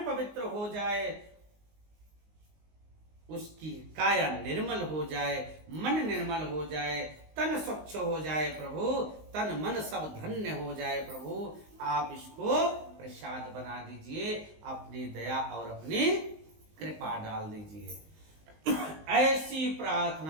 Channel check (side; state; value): left; late; 19 ms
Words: पवित्र हो जाए, उसकी काया निर्मल हो जाए, मन निर्मल हो जाए, तन स्वच्छ हो जाए प्रभु, तन मन सब धन्य हो जाए प्रभु। आप इसको प्रसाद बना दीजिए, अपनी दया और अपनी कृपा डाल दीजिए। ऐसी